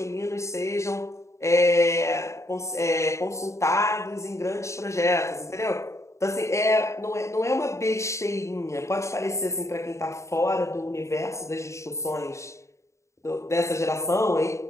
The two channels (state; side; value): late; right; 0.14 ms